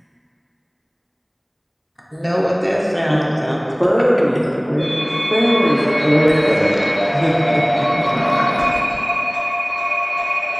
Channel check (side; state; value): both; identical; correlation 1.00